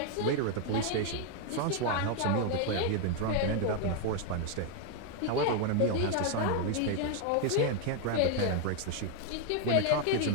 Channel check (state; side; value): different; both; correlation 0.01